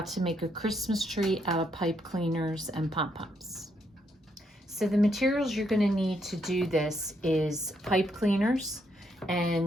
to make a Christmas tree out of pipe cleaners and pom-poms. So the materials you're going to need to do this is pipe cleaners,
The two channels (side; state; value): both; normal; correlation 0.76